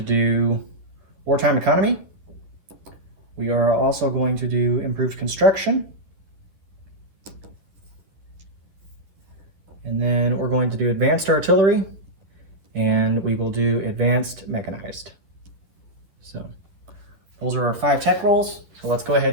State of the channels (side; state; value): left; late; 11 ms